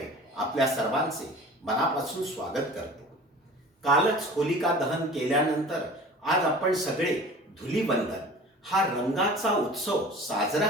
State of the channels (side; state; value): both; normal; correlation 0.42